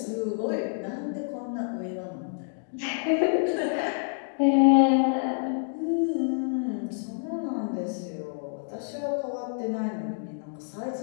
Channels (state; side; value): silent; right; digital silence